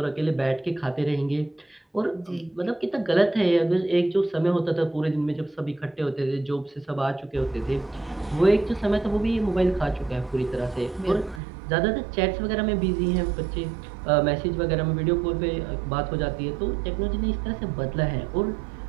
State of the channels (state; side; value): drops out; left; at 11.4 s